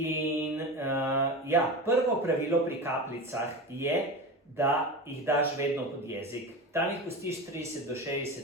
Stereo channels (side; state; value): both; normal; correlation 0.26